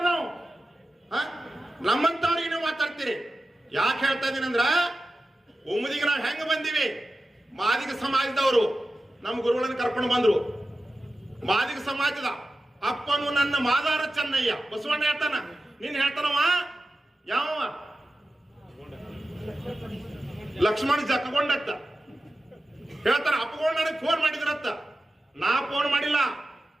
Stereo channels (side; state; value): both; normal; correlation 0.93